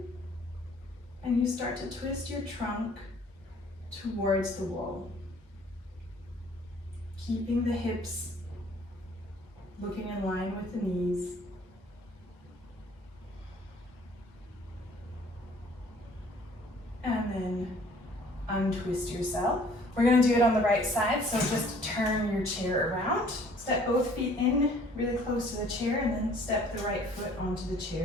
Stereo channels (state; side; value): normal; both; correlation 0.56